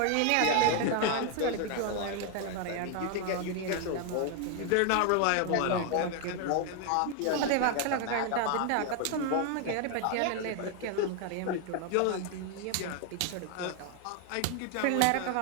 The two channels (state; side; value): different; both; correlation 0.01